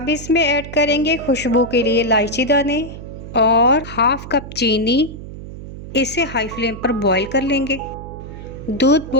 इसमें ऐड करेंगे खुशबू के लिए इलायची दाने और हाफ कप चीनी। इसे हाई फ्लेम पर बॉईल कर लेंगे। दूध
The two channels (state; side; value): noise; right; hum, 12 dB below the sound